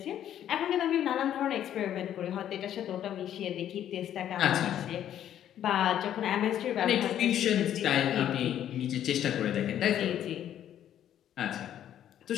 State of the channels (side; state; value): right; quieter; 10.8 dB